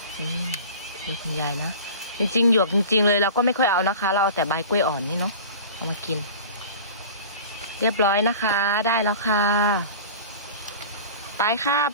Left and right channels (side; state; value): both; inverted; correlation -0.39